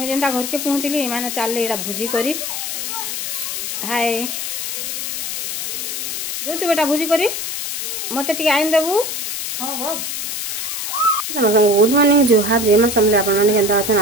जेनता घर के पहुँचली मैंने चलले एटा भुजी करी। हाय जो बेटा भुजी करी मत टे आईन देबू। गुड मॉर्निंग जुहार जय मां समले आपन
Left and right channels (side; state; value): left; noise; hiss, 3 dB below the sound